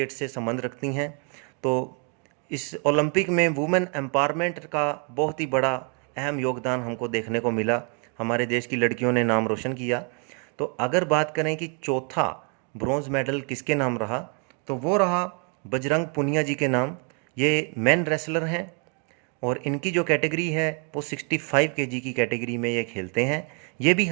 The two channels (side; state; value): left; quieter; 36.9 dB